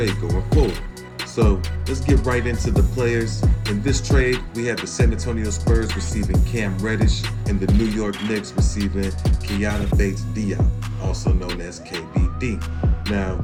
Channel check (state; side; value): identical; both; correlation 1.00